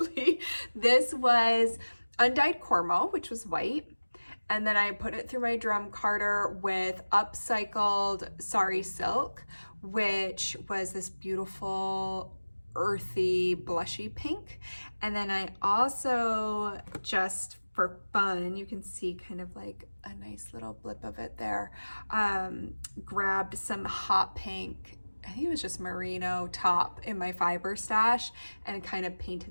This was undyed cormo, which was white. And then I put it through my drum carder with upcycled sari silk, which was this beautiful earthy blushy pink. And then I also, just for fun, you can see kind of like a nice little blip of it there, grabbed some hot pink, I think it was just merino top in my fiber stash, and kind of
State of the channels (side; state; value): both; inverted; correlation -1.00